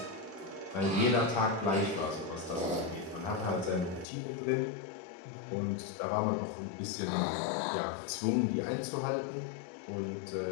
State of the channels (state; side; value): drops out; right; at 4.0 s